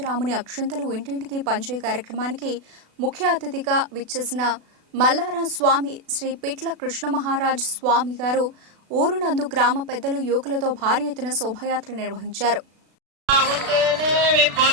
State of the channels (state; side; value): late; left; 36 ms